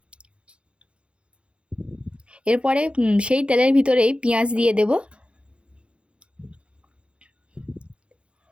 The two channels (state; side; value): late; left; 0.058 ms